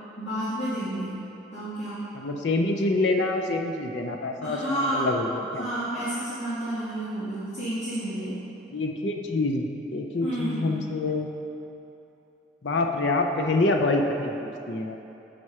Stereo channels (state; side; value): normal; both; correlation 0.39